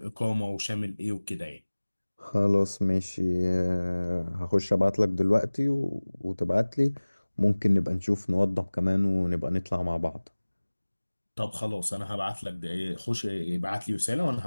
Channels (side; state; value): both; inverted; correlation -1.00